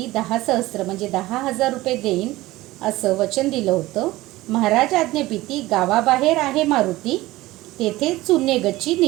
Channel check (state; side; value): quieter; left; 18.1 dB